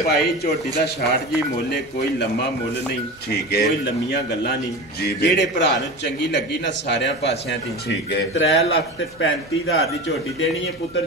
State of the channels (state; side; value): noise; right; hum, 29 dB below the sound